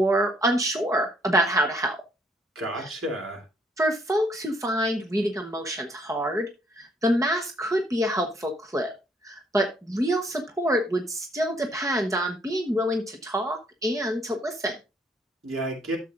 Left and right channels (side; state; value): both; normal; correlation 0.67